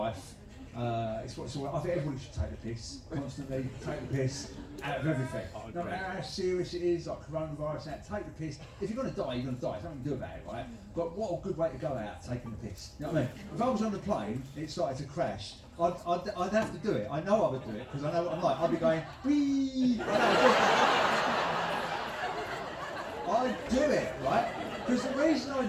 I think everybody should take the piss constantly. Take the piss out of everything. No matter how serious it is, like coronavirus, take the piss. If you're going to die, you're going to die. There's nothing you can do about it, right? But what a good way to go out, taking the piss. You know what I mean? If I was on the plane, it started to crash, I'd have to do it. I know I would do it because I know what I'm like. I'd be going, wee. I do it, right? Because the reason I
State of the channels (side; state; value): both; identical; correlation 1.00